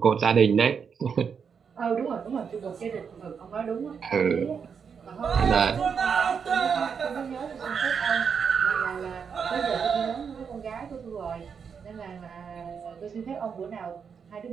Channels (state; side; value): quieter; left; 6.5 dB